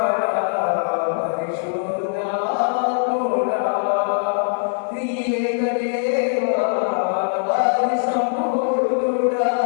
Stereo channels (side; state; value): right; silent; 65 dB below the other